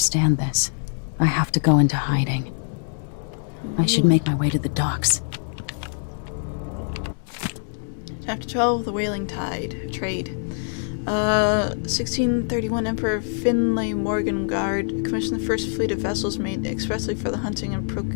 this, I have to go into hiding. I should make my way to the docks. Chapter 12, The Whaling Trade. 1631 Emperor Finlay Morgengard commissioned the first fleet of vessels made expressly for the hunting and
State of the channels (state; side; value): silent; right; digital silence